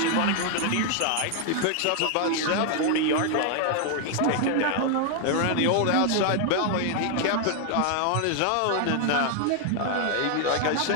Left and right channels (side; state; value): both; different; correlation 0.00